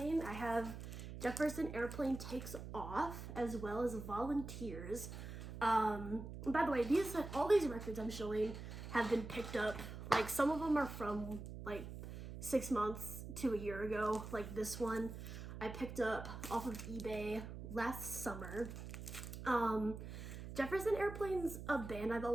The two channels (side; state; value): right; noise; hum, 9 dB below the sound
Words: I have Jefferson Airplane Takes Off, as well as Volunteers. By the way, all these records I'm showing have been picked up. Like, some of them are from like 6 months to a year ago. Like this one I picked up off of eBay last summer. Jefferson Airplane's a band I've